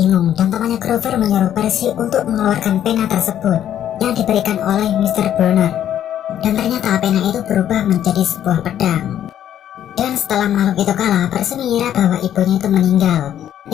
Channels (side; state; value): right; quieter; 10.7 dB